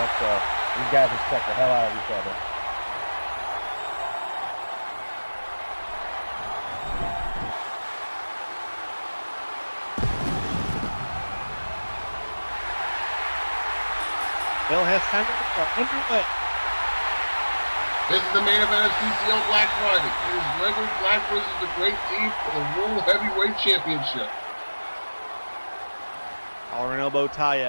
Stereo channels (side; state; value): both; inverted; correlation -1.00